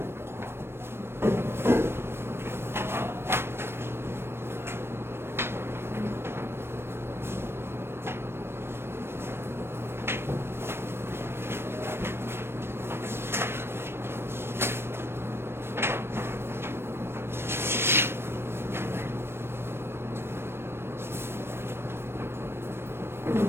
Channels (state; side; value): late; left; 0.12 ms